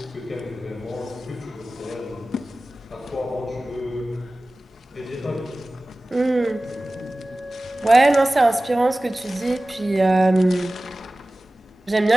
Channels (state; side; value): normal; both; correlation 0.97